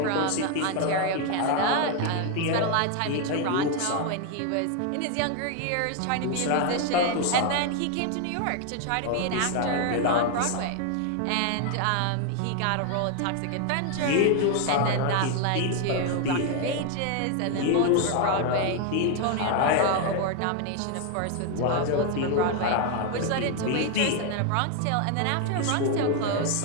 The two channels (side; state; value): both; different; correlation 0.01